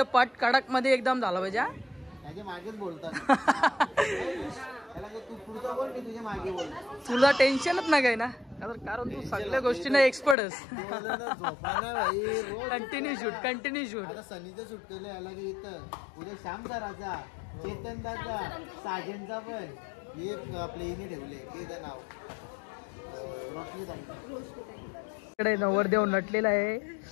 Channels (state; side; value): drops out; right; at 10.4 s